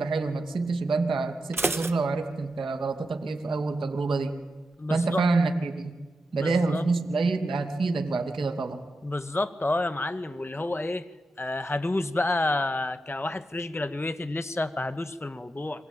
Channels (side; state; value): both; normal; correlation 0.88